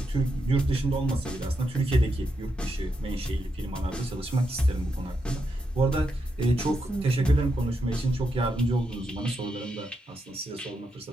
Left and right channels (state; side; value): normal; both; correlation 0.83